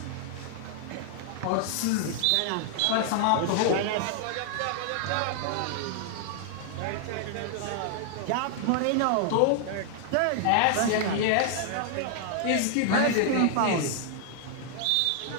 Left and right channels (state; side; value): different; both; correlation 0.00